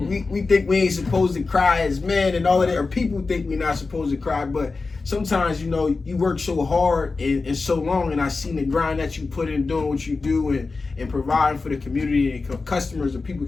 think we ain't supposed to cry as men and all of that, or people think we're not supposed to cry, but sometimes, you work so hard and so long, and I seen the grind that you put in doing what you do and providing for the community and customers and people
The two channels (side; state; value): right; quieter; 4.0 dB